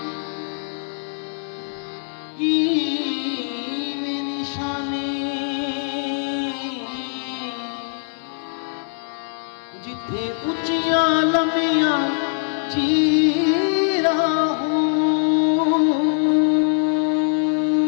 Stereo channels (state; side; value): silent; right; 64 dB below the other